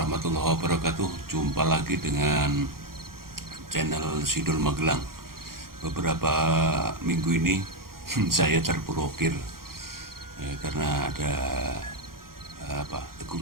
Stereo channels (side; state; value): left; late; 0.92 ms